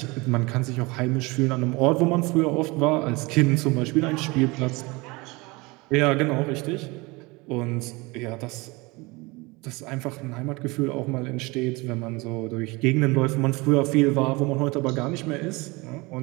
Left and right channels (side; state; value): left; quieter; 24.6 dB